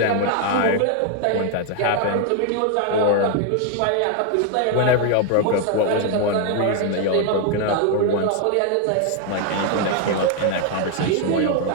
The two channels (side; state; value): both; different; correlation 0.01